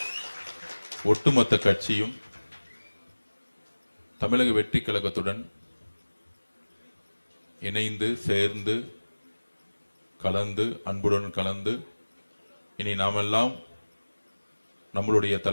ஒட்டுமொத்த கட்சியும் தமிழக வெற்றி கழகத்துடன் இணைந்து சேர்ந்து கலந்து அன்புடன் கலந்து இனி நாமெல்லாம் நம்மளுடைய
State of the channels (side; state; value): both; inverted; correlation -1.00